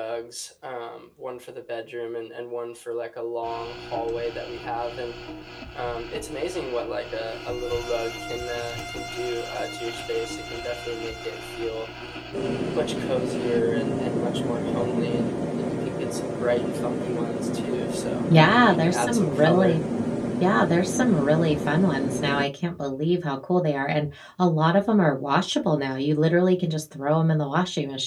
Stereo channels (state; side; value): identical; both; correlation 1.00